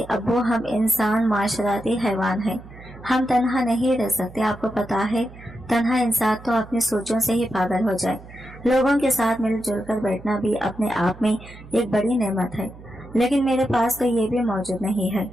अब्बू हम इंसान माशराती हैवान हैं, हम तन्हा नहीं रह सकते। आपको पता है तन्हा इंसान तो अपनी सोचों से ही पागल हो जाए। लोगों के साथ मिलजुल कर बैठना भी अपने आप में एक बड़ी नेमत है, लेकिन मेरे पास तो ये भी मौजूद नहीं है।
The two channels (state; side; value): noise; right; hum, 18 dB below the sound